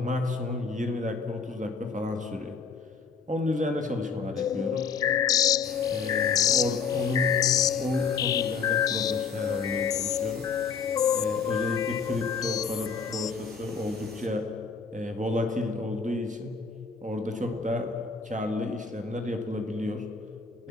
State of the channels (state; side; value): quieter; right; 5.5 dB